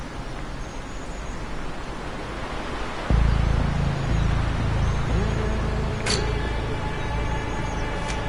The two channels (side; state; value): both; identical; correlation 1.00